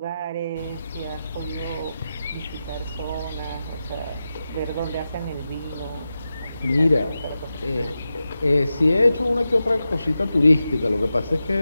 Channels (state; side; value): inverted; both; correlation -0.91